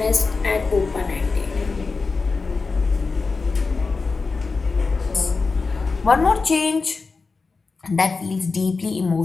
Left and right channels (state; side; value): quieter; right; 4.3 dB